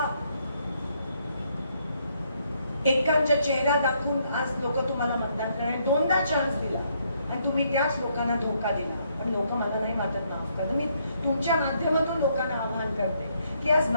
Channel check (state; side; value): inverted; both; correlation -0.72